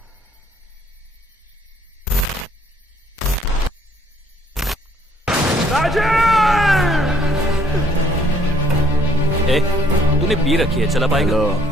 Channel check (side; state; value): both; normal; correlation 0.63